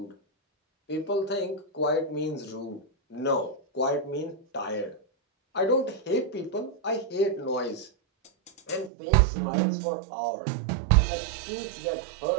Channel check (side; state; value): left; drops out; at 8.9 s